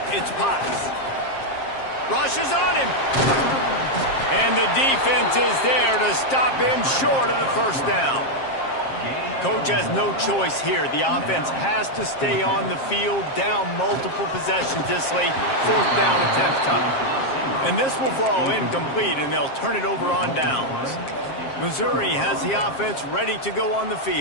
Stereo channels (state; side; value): late; right; 7.5 ms